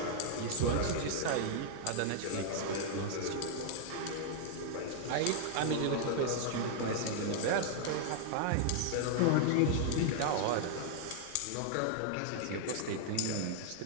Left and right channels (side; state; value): both; different; correlation 0.00